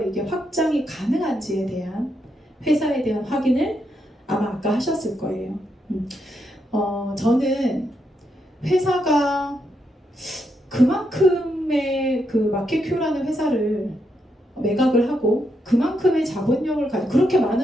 이게 확장이 가능한지에 대한 회사에 대한 확인을 아마 아까 하셨을 거예요. 저는 회사가 그만큼의 그 마켓큐라는 회사를 매각을 하고 그만큼의 자본력을 가지고 그렇게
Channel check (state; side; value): normal; both; correlation 0.80